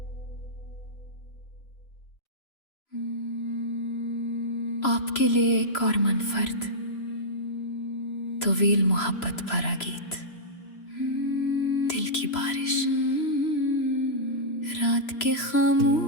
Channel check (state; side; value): late; right; 3.0 ms